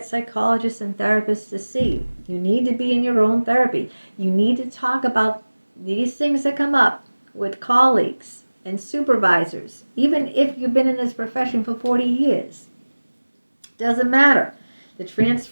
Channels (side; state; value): both; inverted; correlation -1.00